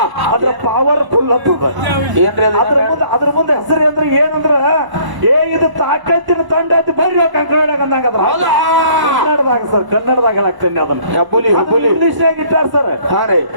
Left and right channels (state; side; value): late; left; 1.0 ms